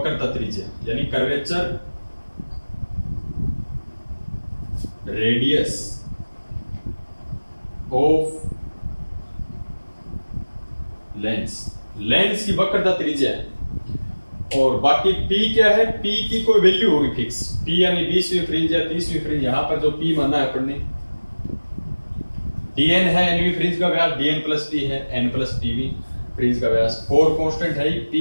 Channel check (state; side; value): inverted; both; correlation -1.00